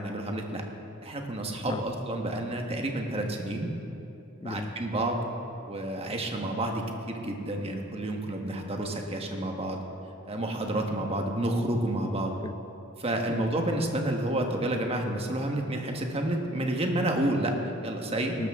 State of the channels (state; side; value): normal; both; correlation 0.53